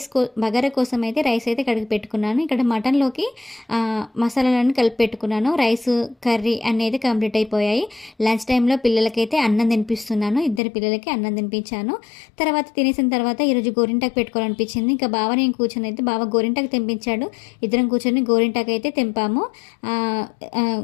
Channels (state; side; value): drops out; right; at 10.6 s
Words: బగారా కోసం అయితే రైస్ అయితే కడిగి పెట్టుకున్నాను. ఇక్కడ మటన్లోకి మసాలాలన్నీ కలిపి పెట్టుకున్నాను. రైస్ కర్రీ అనేది కంప్లీట్ అయిపోయాయి. లంచ్ టైంలో పిల్లలకైతే అన్నం తినిపిస్తున్నాను. ఇద్దరు పిల్లలకి అన్నం తినిపించాను. తర్వాత తినేసిన తర్వాత ఈరోజు గోరింటాకు పెట్టుకోవాలనిపించింది. ఇంకా బావ నేను కూర్చొని అయితే బావ గోరింటాకు తెంపించాడు. ఇద్దరం కూర్చొని గోరింటాకు అయితే తెంపాము.